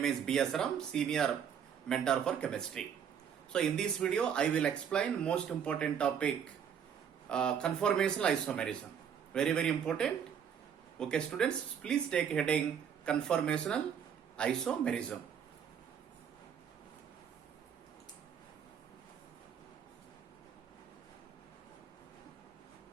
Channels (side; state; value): left; quieter; 8.0 dB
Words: is B.S. Ram, Senior Mentor for Chemistry. So in this video, I will explain most important topic, conformational isomerism. Very, very important. Okay students, please take heading conformational isomerism.